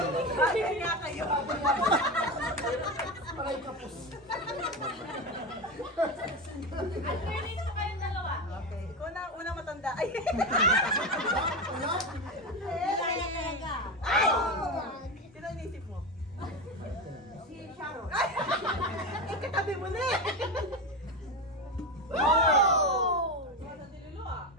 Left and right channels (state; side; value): normal; both; correlation 0.18